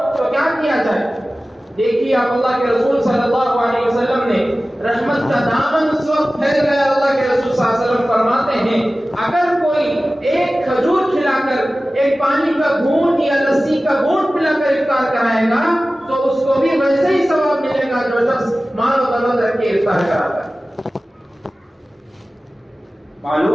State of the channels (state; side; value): normal; both; correlation 0.96